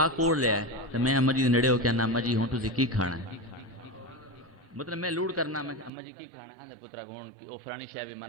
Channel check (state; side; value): drops out; left; at 5.9 s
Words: کوڑ لیا ہے تے میں اماں جی دے نیڑے ہو کے اماں جی ہن تسی کی کھانا ہے مطلب میں لوڑ کرنا میں اماں جی کی کھانا ہے پترا ہن او فلانی شے بھی